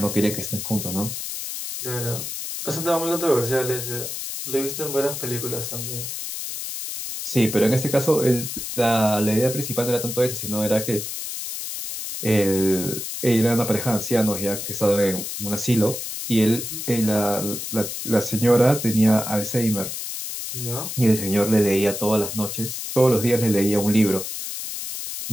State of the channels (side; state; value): left; noise; hiss, 6 dB below the sound